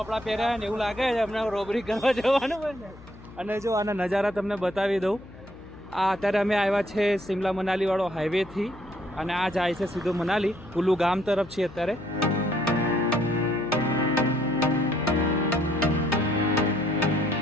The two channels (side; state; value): left; noise; hum, 20 dB below the sound